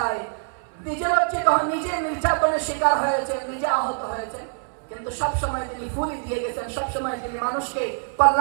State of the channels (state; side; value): silent; left; 62 dB below the other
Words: নিজে লজ্জিত হন, নিজে নির্যাতনের শিকার হয়েছেন, নিজে আহত হয়েছেন, কিন্তু সব সময় তিনি ফুলি দিয়ে গেছেন, সব সময় তিনি মানুষকে